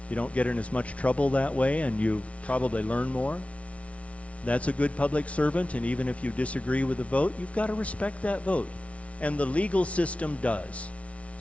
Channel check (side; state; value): right; late; 0.064 ms